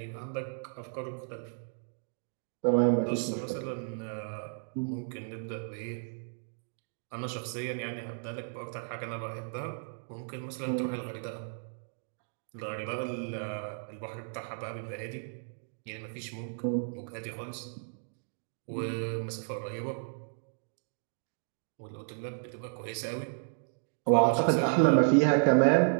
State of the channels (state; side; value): silent; left; digital silence